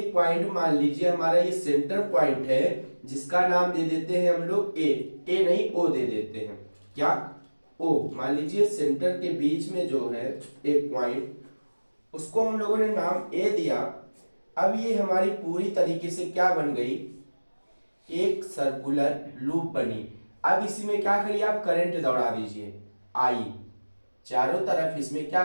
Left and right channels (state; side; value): inverted; both; correlation -1.00